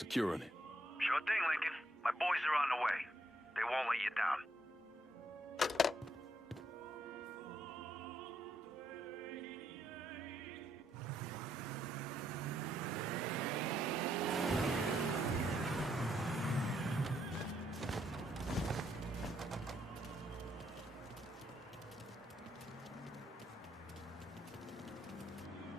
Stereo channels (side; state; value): both; normal; correlation 0.75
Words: it. Sure thing, Lincoln. My boys are on the way. They won't let you down.